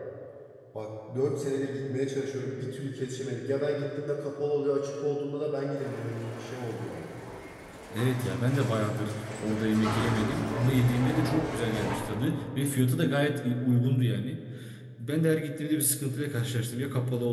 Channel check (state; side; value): identical; both; correlation 1.00